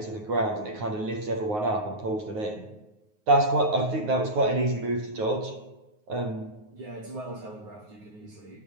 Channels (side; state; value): left; late; 9.5 ms